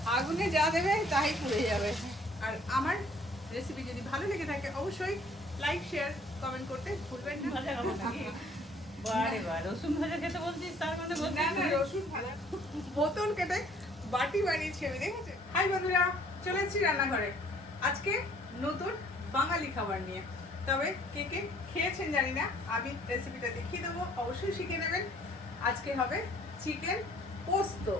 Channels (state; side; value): normal; both; correlation 0.58